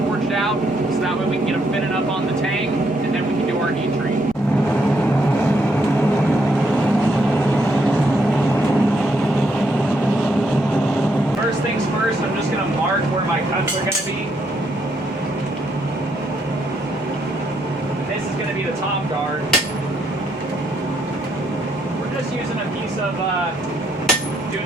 out, so that way we can get them fitted up on the tang, and then we can do our heat treat. First things first, I'm just going to mark where my cuts are going to be. This is going to be the top guard. Just using a piece of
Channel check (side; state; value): left; noise; rumble, 29 dB below the sound